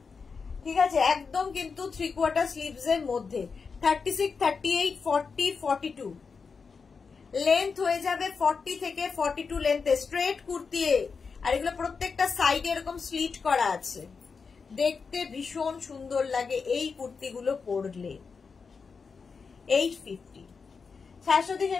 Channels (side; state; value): right; quieter; 5.2 dB